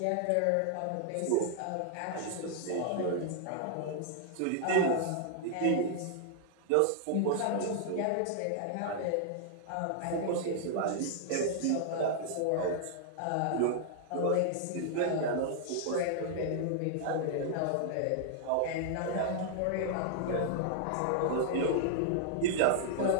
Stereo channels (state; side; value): different; both; correlation -0.01